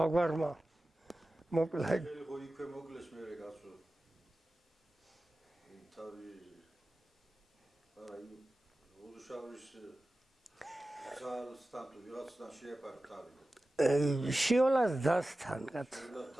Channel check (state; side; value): normal; both; correlation 0.95